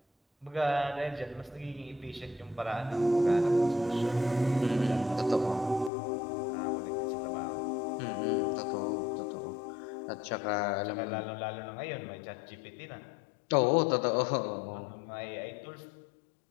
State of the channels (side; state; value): right; drops out; at 5.9 s